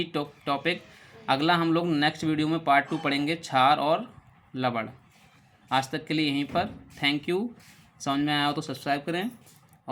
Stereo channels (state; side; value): identical; both; correlation 1.00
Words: टॉपिक। अगला हम लोग नेक्स्ट वीडियो में पार्ट 2 पढ़ेंगे क्षार और लवण। आज तक के लिए यहीं पर, थैंक यू। समझ में आया हो तो सब्सक्राइब करें